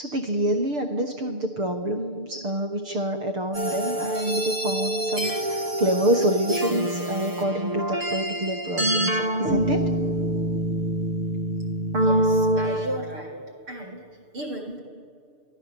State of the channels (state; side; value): late; left; 6.7 ms